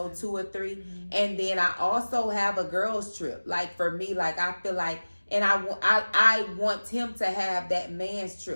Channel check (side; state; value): both; inverted; correlation -1.00